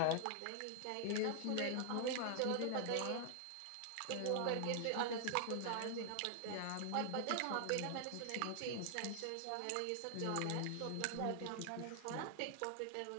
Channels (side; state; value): both; different; correlation 0.00